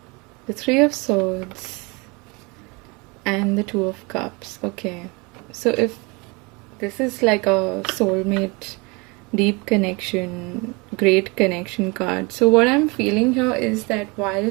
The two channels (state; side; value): quieter; left; 27.8 dB